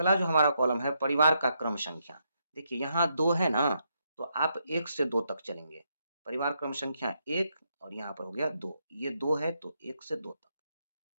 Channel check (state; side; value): inverted; both; correlation -0.80